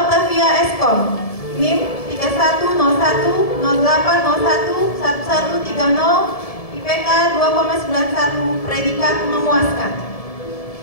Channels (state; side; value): late; right; 1.7 ms